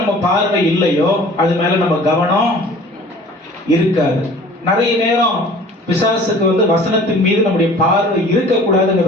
பார்வை இல்லையோ அது மேல நம்ம கவனம் இருக்காது. நிறைய நேரம் பிசாசுக்கு வசனத்தின் மீது நம்முடைய பார்வை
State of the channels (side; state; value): both; normal; correlation 0.47